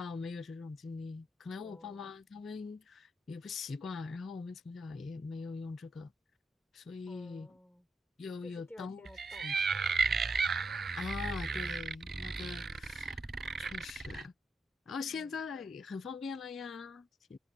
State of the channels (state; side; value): normal; both; correlation 0.81